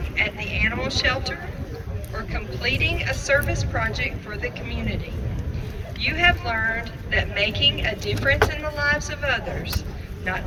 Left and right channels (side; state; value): both; identical; correlation 1.00